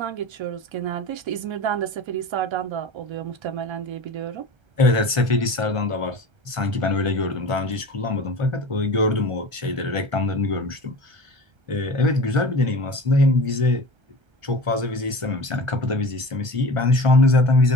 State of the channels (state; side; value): late; left; 1.3 ms